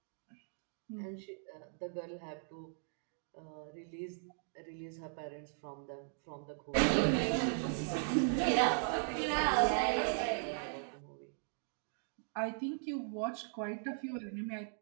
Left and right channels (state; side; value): silent; left; digital silence